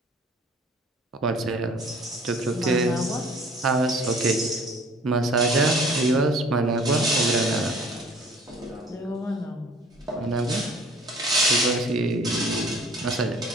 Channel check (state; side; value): normal; both; correlation 0.51